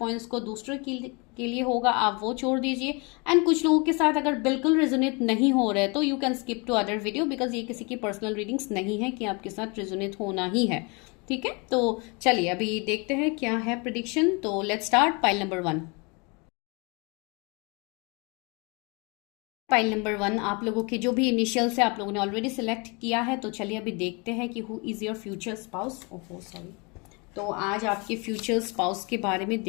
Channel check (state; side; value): quieter; right; 30.3 dB